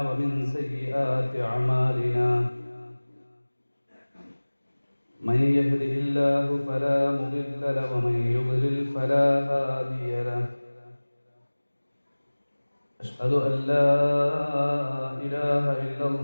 ومن سيئات أعمالنا من يهده الله فلا مضل له ومن يضلل فلا هادي له أشهد أن لا إله إلا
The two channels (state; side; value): inverted; both; correlation -1.00